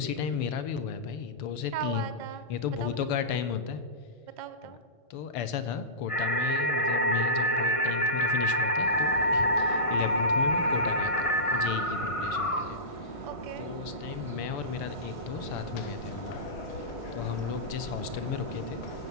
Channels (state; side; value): late; right; 1.5 ms